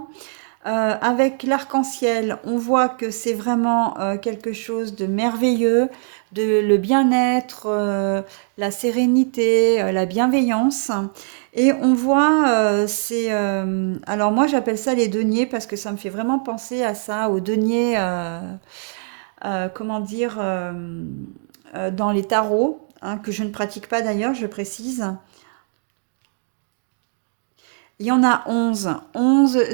Avec l'arc-en-ciel, on voit que c'est vraiment quelque chose de merveilleux, le bien-être, la sérénité, la bienveillance. Et on voit, alors moi j'appelle ça les deniers parce que ça me fait vraiment penser à ça, aux deniers, comment dire, dans les tarots, hein, que je ne pratique pas d'ailleurs, je précise. Il y en a 11. 11,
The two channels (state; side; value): silent; left; digital silence